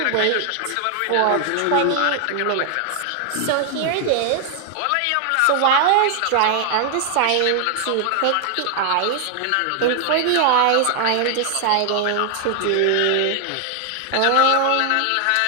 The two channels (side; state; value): both; different; correlation 0.00